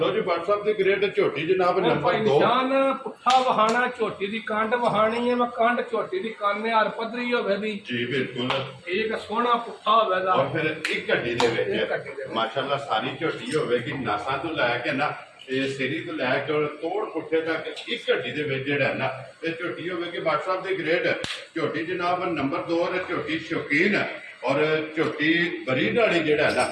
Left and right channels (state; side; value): identical; both; correlation 1.00